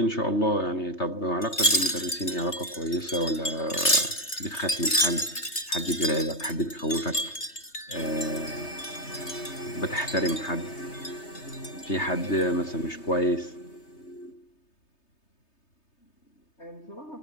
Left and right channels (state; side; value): late; right; 3.3 ms